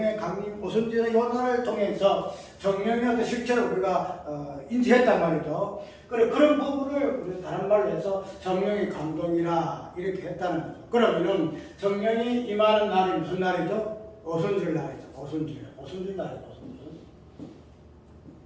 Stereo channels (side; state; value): both; identical; correlation 1.00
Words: 강림 오순절의 요단을 통해서 성령의 어떤 실체를 우리가 인지했단 말이죠. 그런 부분을 우리 다른 말로 해서 성령의 감동이라 이렇게 했다는 거죠. 그러면은 성령이 임하는 날이 무슨 날이죠? 오순절 날이죠. 오순절 날이죠.